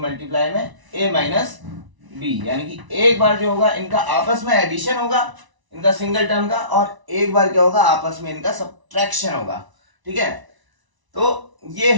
में ए माइनस बी, यानी कि एक बार जो होगा इनका आपस में एडिशन होगा, इनका सिंगल टर्म का, और एक बार क्या होगा आपस में इनका सब्ट्रैक्शन होगा। ठीक है, तो ये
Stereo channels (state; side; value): late; left; 1.0 ms